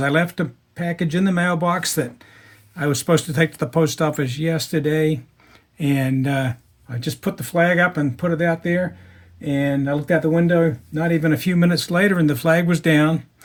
I left a package in the mailbox that I was supposed to take to the post office yesterday. And I just put the flag up and put it out there. And I looked out the window not even a few minutes later and the flag was down.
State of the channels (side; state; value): both; identical; correlation 1.00